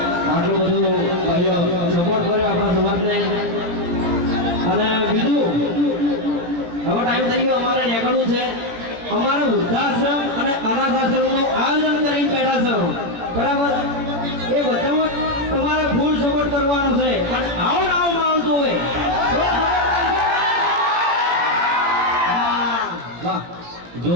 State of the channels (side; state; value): left; late; 18 ms